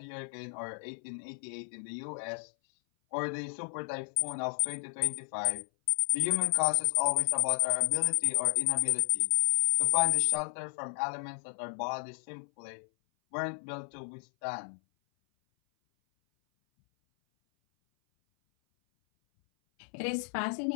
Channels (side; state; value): right; silent; 56 dB below the other